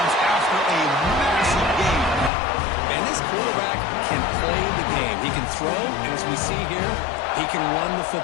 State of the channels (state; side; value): drops out; right; at 2.3 s